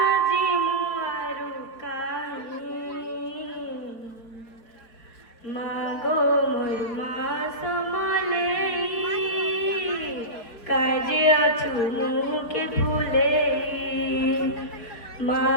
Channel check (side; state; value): right; late; 4.5 ms